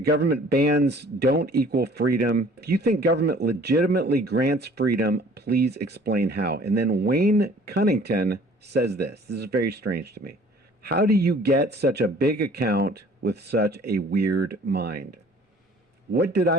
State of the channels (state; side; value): normal; both; correlation 0.52